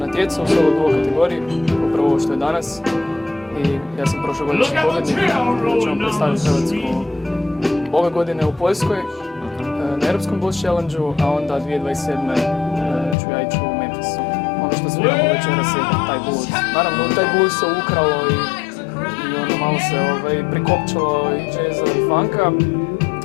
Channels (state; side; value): drops out; right; at 13.2 s